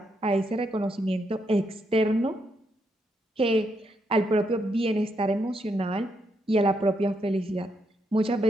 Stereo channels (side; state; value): both; normal; correlation 0.78